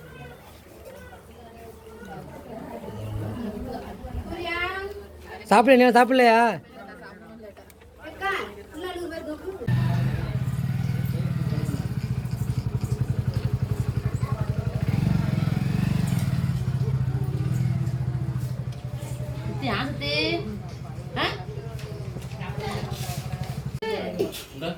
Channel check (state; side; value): identical; both; correlation 1.00